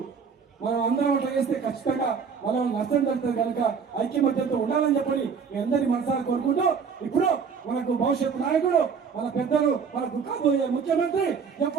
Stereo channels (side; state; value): left; quieter; 6.1 dB